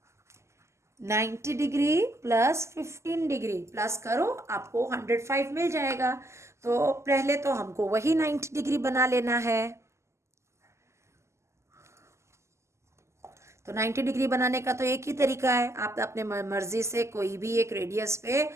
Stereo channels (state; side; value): late; left; 0.13 ms